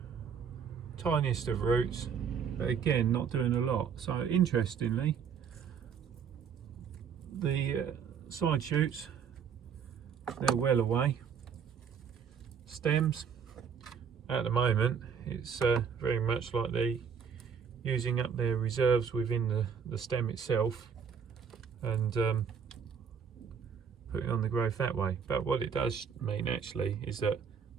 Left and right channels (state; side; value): quieter; left; 6.9 dB